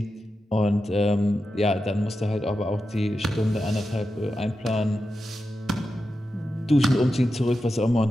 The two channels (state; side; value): normal; both; correlation 0.90